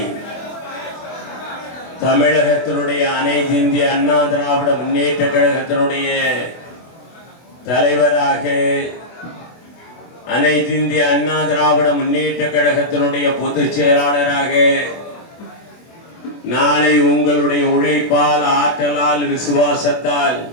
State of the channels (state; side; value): late; right; 24 ms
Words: தமிழகத்தினுடைய அனைத்து இந்திய அண்ணா திராவிட முன்னேற்ற கழகத்தினுடைய தலைவராக, அனைத்து இந்திய அண்ணா திராவிட முன்னேற்ற கழகத்தினுடைய பொதுச் செயலாளராக நாளை உங்களுடைய உழைப்பால், ஆற்றலால், விசுவாசத்தால்